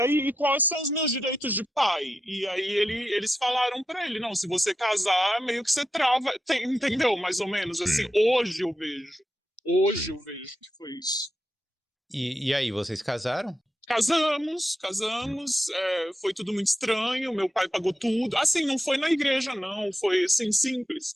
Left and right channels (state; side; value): normal; both; correlation 0.88